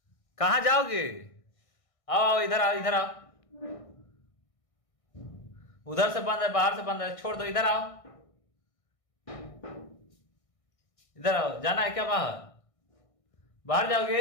कहाँ जाओगे? आओ इधर आओ, इधर आओ। उधर से बंद है, बाहर से बंद है, छोड़ दो, इधर आओ, इधर आओ। जाना है क्या बाहर? बाहर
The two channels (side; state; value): right; late; 1.6 ms